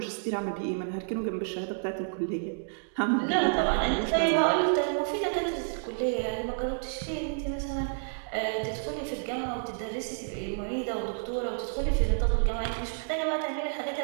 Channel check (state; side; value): silent; left; digital silence